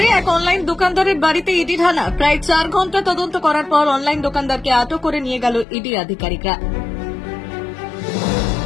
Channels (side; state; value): right; drops out; at 5.7 s